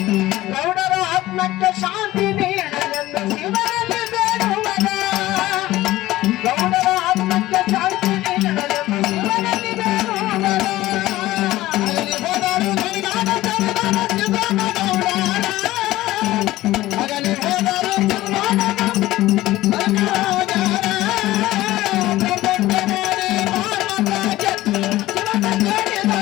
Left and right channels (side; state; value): right; quieter; 16.6 dB